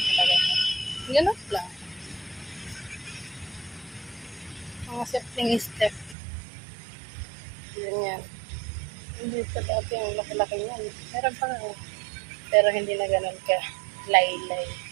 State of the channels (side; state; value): left; drops out; at 6.2 s